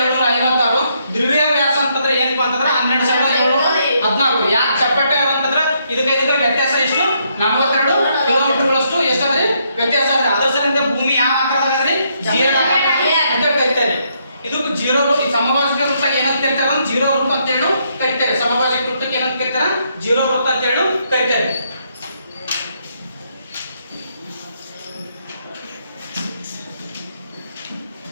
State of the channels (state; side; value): inverted; both; correlation -0.74